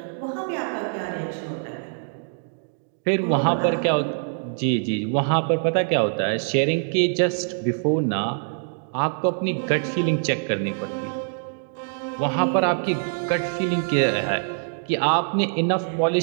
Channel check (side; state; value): left; silent; digital silence